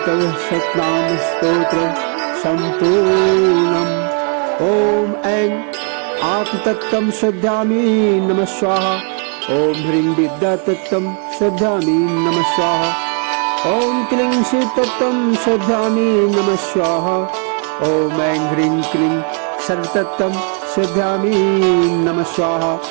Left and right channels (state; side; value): quieter; left; 39.6 dB